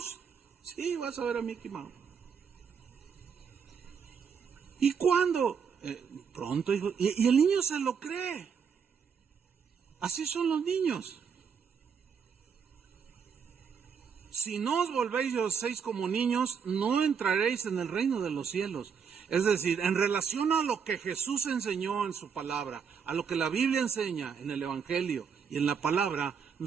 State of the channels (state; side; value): quieter; left; 6.6 dB